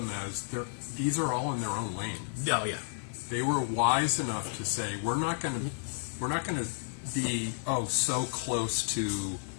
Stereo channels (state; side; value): silent; right; digital silence